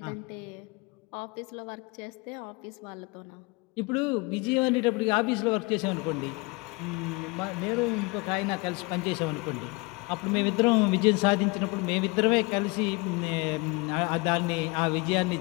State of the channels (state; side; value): quieter; right; 26.8 dB